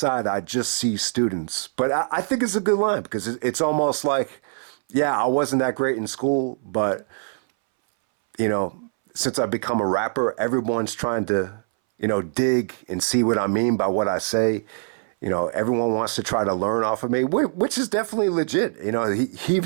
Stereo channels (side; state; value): left; silent; 61 dB below the other